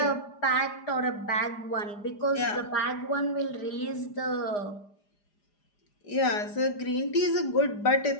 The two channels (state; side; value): late; right; 4.9 ms